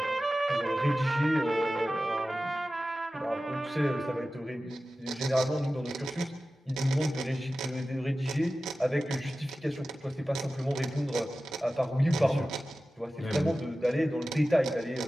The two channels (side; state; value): both; normal; correlation 0.95